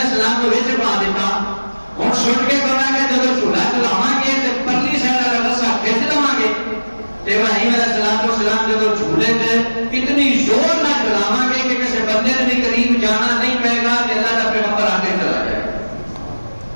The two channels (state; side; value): inverted; both; correlation -1.00